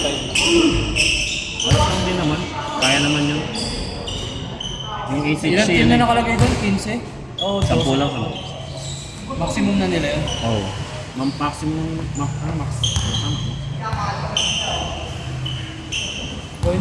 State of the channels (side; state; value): both; identical; correlation 1.00